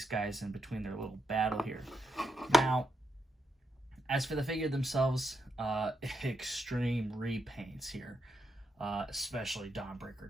guys in between their little battle here. Now, as for the figure themselves, extreme repaints here, especially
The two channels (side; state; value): both; normal; correlation 0.83